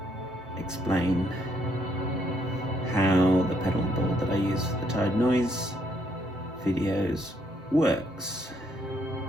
explain how the pedal board that I use for the Tide Noise videos works.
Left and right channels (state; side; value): normal; both; correlation 0.71